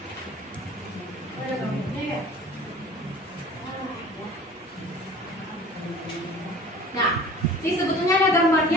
Ada gambarnya ya? Nah, ini sebetulnya ada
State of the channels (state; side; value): normal; both; correlation 0.44